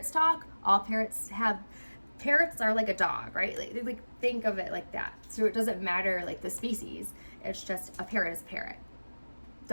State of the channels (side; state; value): both; inverted; correlation -1.00